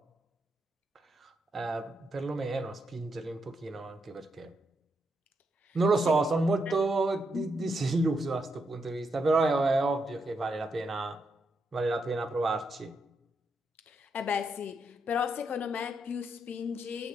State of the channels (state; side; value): normal; both; correlation 0.81